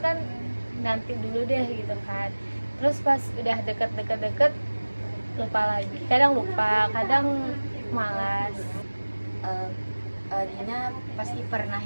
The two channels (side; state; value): both; inverted; correlation -1.00